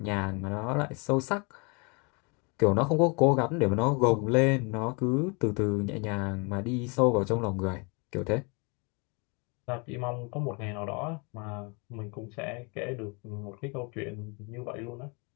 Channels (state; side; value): quieter; right; 31.9 dB